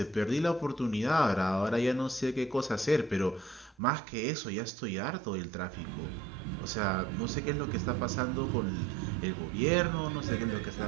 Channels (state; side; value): drops out; left; at 3.8 s